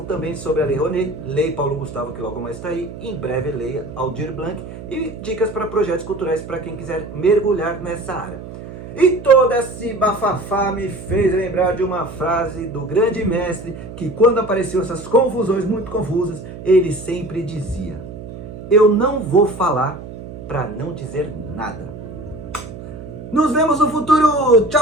também sobre a Lei Rouanet, Lei Paulo Gustavo, que logo mais está aí, em breve Lei Aldir Blanc, e dicas para projetos culturais para quem quiser mergulhar nessa área. E todo esse bafafá me fez lembrar de uma frase do grande mestre, que quando apareciam essas confusões muito confusas, ele sempre dizia: eu não vou falar para não dizer nada. Nos vemos no futuro. Tchau,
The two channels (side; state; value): right; noise; hum, 12 dB below the sound